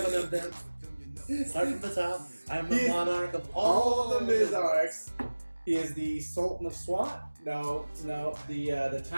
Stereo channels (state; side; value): inverted; both; correlation -1.00